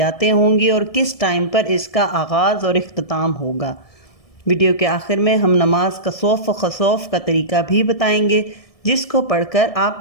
ہوں گی اور کس ٹائم پر اس کا آغاز اور اختتام ہوگا۔ ویڈیو کے آخر میں ہم نماز کسوف و خسوف کا طریقہ بھی بتائیں گے، جس کو پڑھ کر آپ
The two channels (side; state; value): right; late; 1.7 ms